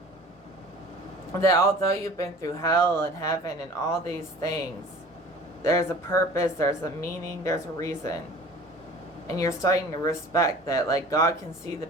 that although you've been through hell and heaven and all these things, there's a purpose, there's a meaning, there's a reason. And you're starting to respect that, like, God can see the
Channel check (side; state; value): both; normal; correlation 0.44